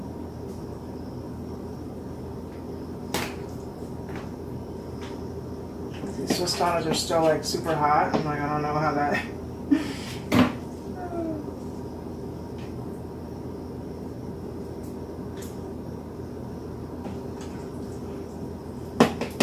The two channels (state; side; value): identical; both; correlation 1.00